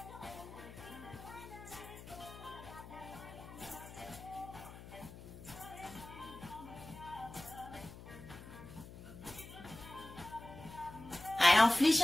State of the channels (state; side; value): noise; left; hum, 15 dB below the sound